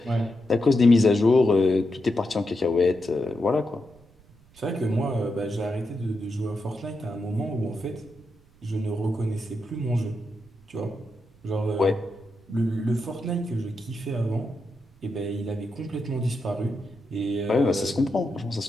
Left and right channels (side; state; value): right; noise; rumble, 28 dB below the sound